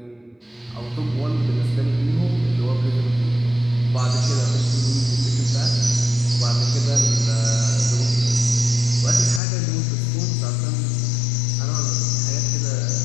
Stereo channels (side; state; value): right; drops out; at 9.4 s